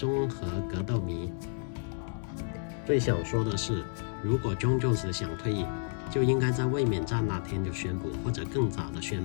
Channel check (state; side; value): silent; right; 57 dB below the other